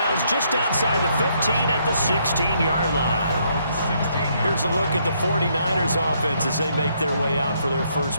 just outside the 15 at the 16-yard line. Here's a look at the 49ers offense as they make their way out for their first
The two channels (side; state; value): both; inverted; correlation -0.72